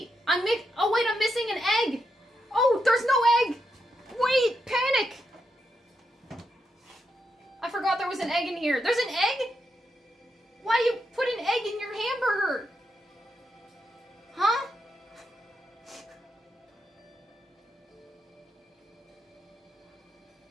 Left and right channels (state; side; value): normal; both; correlation 0.83